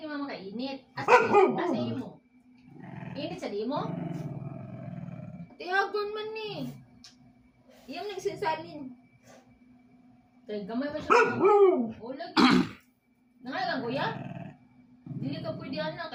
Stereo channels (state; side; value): identical; both; correlation 1.00